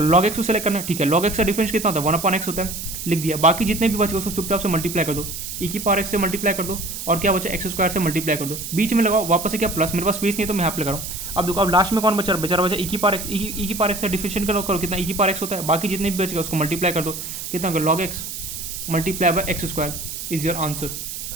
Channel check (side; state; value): right; noise; hiss, 7 dB below the sound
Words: लॉग एक्स को सेलेक्ट करना, ठीक है लॉग एक्स का डिफरेंस कितना होता है, 1/x होता है, लिख दिया। बाकी जितने भी बचे उसको चुपचाप से मल्टीप्लाई कर दो, ए की पावर एक्स से मल्टीप्लाई कर दो और क्या बचा एक्स स्क्वायर से मल्टीप्लाई कर दो, बीच में लगाओ वापस से क्या प्लस। मेरे पास स्पेस नहीं है तो मैं यहाँ पे लगा रहा हूँ। अब देखो अब लास्ट में कौन बचा, बेचारा बचा ए की पावर एक्स। ई की पावर एक्स का डिफरेंशिएट करो कितना, ई की पावर एक्स होता है। बाकी जितने भी बच गए उसको मल्टीप्लाई कर दो, कितना होगा log x multiply by x square is your answer.